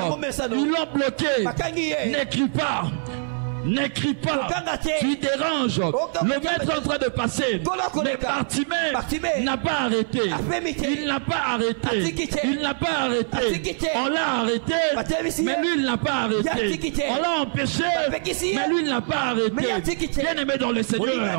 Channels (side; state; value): left; silent; 56 dB below the other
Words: l'ont bloqué. N'écris pas. N'écris pas, tu déranges. Le maître est en train de passer. Mais Bartimée n'a pas arrêté. Il n'a pas arrêté. Il n'a pas arrêté. On l'a arrêté, mais lui il n'a pas arrêté. On l'a empêché, mais lui il n'a pas arrêté. Bien aimé dans le